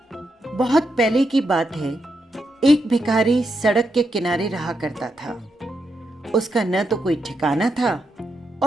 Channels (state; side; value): normal; both; correlation 0.83